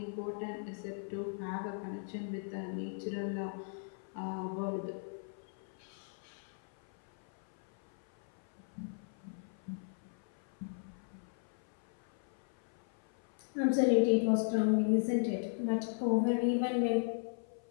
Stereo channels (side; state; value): right; silent; 53 dB below the other